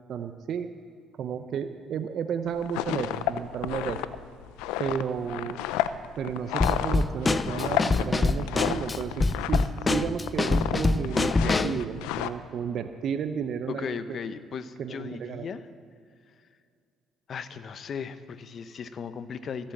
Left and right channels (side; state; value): both; normal; correlation 0.70